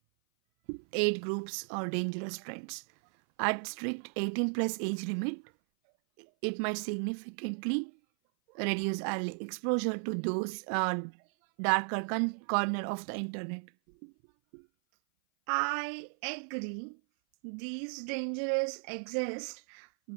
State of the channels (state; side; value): silent; left; 55 dB below the other